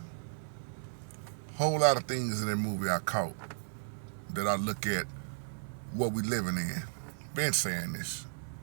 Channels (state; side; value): silent; left; 55 dB below the other